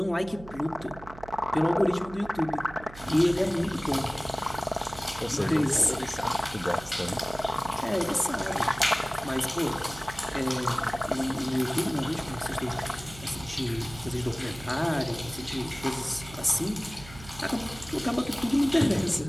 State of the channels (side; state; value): right; noise; hum, 17 dB below the sound